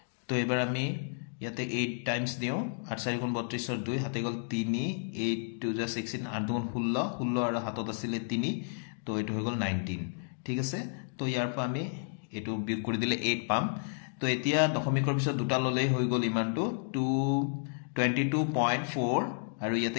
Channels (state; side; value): silent; right; digital silence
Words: তো এবাৰ আমি ইয়াতে 8 টাইমস দিও 8 4 গুণ 32 ৰ 2 হাতে গল 3 8 2 যা 16 8 গুণ 16 16 আৰু হাতত আছিল 3 তো এটো হৈ গল 19 ঠিক আছে তো ইয়াৰ পৰা আমি এটো বিয়োগ কৰি দিলে 8 পাম তো এতিয়া দশমিকৰ পিছত দুটা ললেই হৈ গল ইমানটো 22.4 আৰু